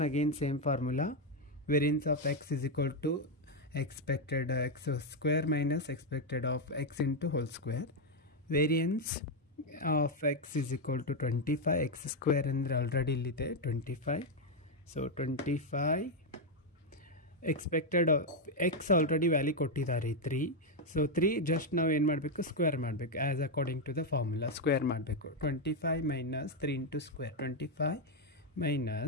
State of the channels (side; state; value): both; normal; correlation 0.03